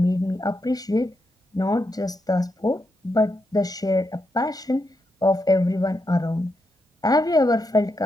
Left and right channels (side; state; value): both; normal; correlation 0.83